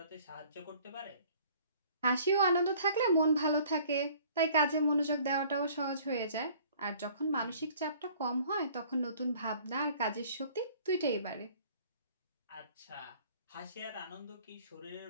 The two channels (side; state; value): both; inverted; correlation -0.53